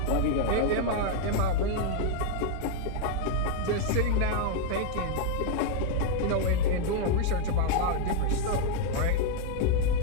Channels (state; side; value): different; both; correlation 0.00